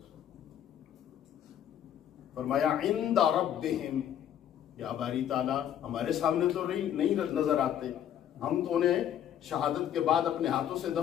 فرمایا عند ربہم, یا باری تعالیٰ ہمارے سامنے تو نہیں نظر آتے, ہم تو انہیں شہادت کے بعد اپنے ہاتھوں سے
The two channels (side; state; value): right; quieter; 10.1 dB